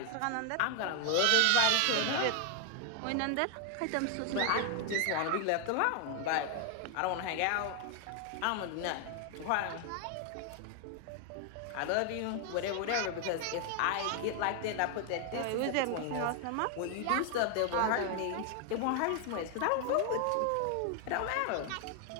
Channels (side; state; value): both; different; correlation 0.00